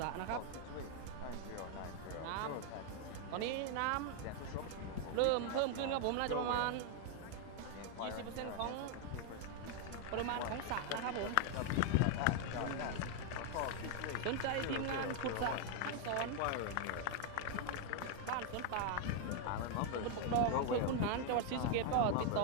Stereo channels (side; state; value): both; different; correlation 0.00